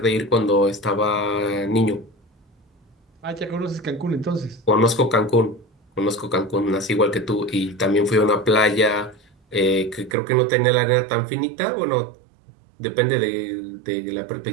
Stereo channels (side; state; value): left; drops out; at 10.2 s